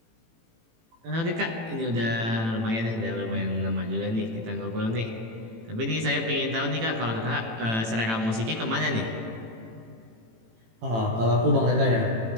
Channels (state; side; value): late; left; 18 ms